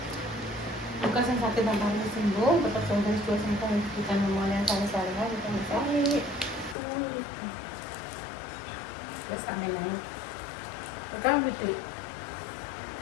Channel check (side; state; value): right; drops out; at 6.8 s